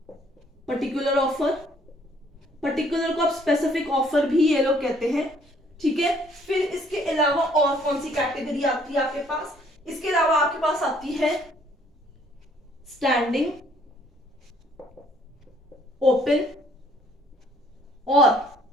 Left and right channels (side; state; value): both; normal; correlation 0.62